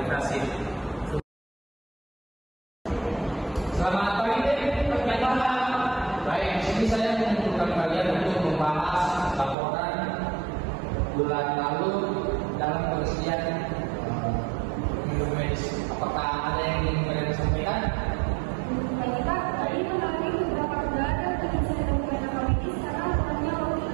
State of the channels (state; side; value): drops out; left; at 9.6 s